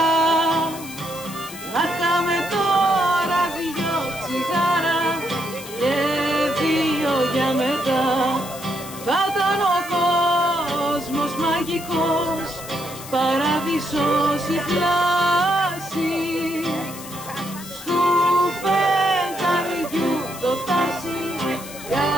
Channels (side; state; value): left; noise; hiss, 14 dB below the sound